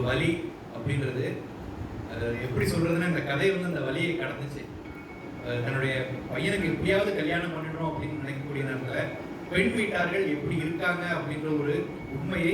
வலி அப்படின்றது, அது எப்படி சொல்றதுன்னா, இந்த கதை வந்து அந்த வலியை கடந்துச்சு. தன்னுடைய பையனுக்கு எப்படியாவது கல்யாணம் பண்ணிடணும் அப்படின்னு நினைக்கக்கூடிய நேரத்தில் பெண் வீட்டார்கள் எப்படி இருக்காங்க அப்படின்ற ஒரு உண்மையை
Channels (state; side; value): identical; both; correlation 1.00